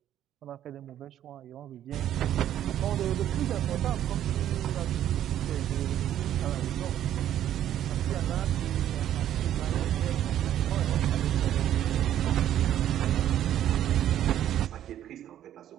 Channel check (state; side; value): quieter; left; 11.4 dB